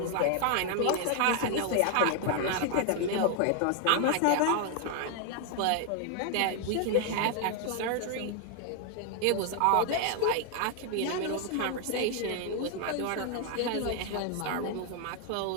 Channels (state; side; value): different; both; correlation 0.00